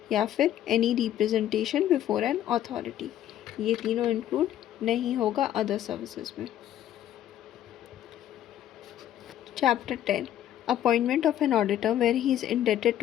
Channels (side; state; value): right; quieter; 11.7 dB